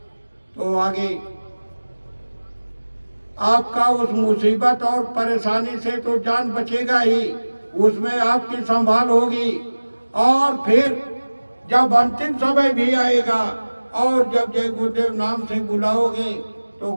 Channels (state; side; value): inverted; both; correlation -1.00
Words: तो आगे आपका उस मुसीबत और परेशानी से तो जान बचेगा ही, उसमें आपकी संभाल होगी। और फिर जब अंतिम समय भी आएगा और जब जय गुरुदेव नाम से बुलाओगे तो